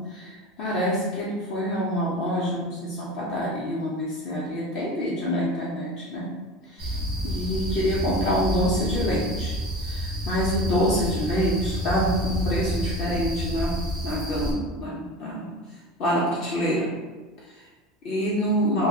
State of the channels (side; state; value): both; normal; correlation 0.34